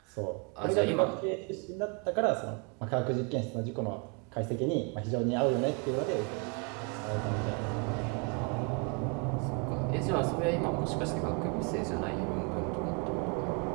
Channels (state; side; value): quieter; left; 33.9 dB